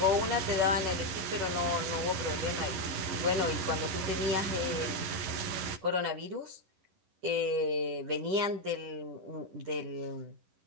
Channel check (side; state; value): left; late; 11 ms